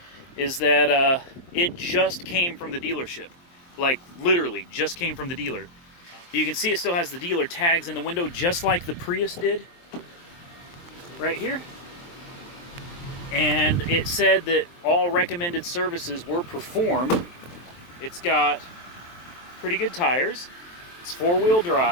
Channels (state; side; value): late; right; 23 ms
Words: is that it just came from the dealership. Like, literally, just came from the dealer. You can see it still has the dealer tags in the window, just like the Prius did. Right here. And it said that all recommended services were performed. It's got pretty good tires. It's four-wheel